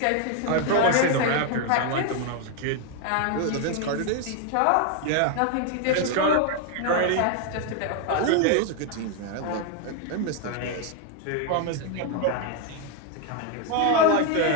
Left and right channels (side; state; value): both; different; correlation 0.01